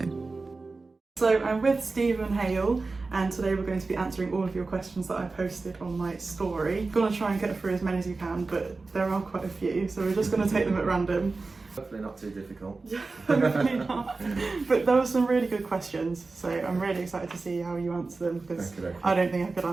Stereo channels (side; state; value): left; quieter; 3.8 dB